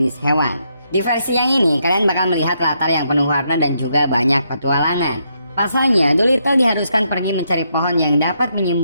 hewan. Di versi yang ini kalian bakal melihat latar yang penuh warna dan juga banyak petualangan. Pasalnya, Dolittle diharuskan pergi mencari pohon yang dapat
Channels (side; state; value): both; inverted; correlation -0.77